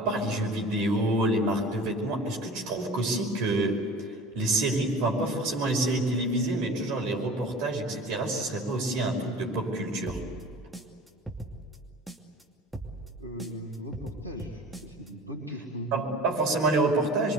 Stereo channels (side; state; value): both; normal; correlation 0.41